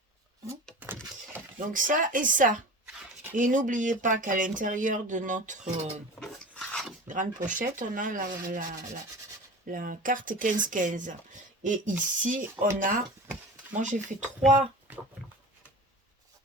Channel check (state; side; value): normal; both; correlation 0.34